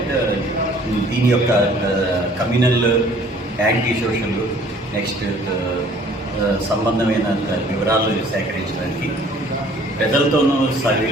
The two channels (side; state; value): both; normal; correlation 0.55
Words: దీని యొక్క కమ్యూనల్ యాంటీ సోషల్, నెక్స్ట్ సంబంధమైన వివరాలు సేకరించడానికి ప్రజలతోనూ